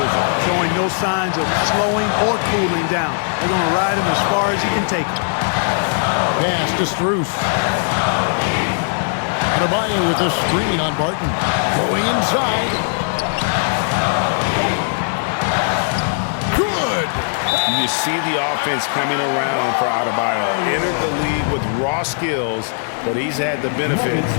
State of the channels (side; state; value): right; silent; 66 dB below the other